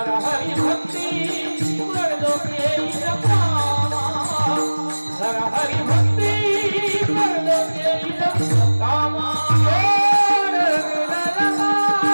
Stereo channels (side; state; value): both; inverted; correlation -1.00